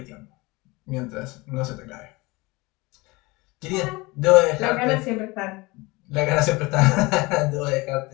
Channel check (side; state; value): right; quieter; 23.6 dB